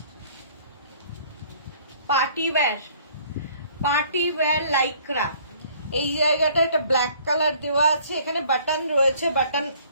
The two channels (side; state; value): both; inverted; correlation -0.57